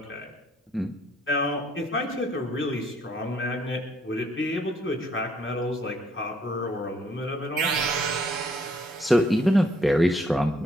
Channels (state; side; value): normal; both; correlation 0.67